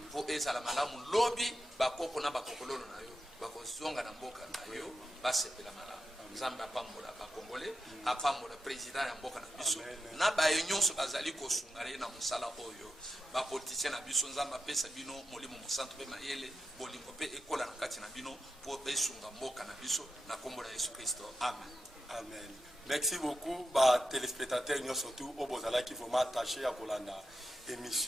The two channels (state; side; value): normal; both; correlation 0.87